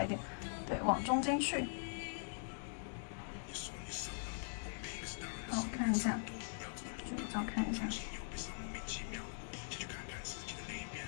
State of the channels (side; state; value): right; silent; digital silence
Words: 一点，对，往中间去。好，看一下，卷照看一下。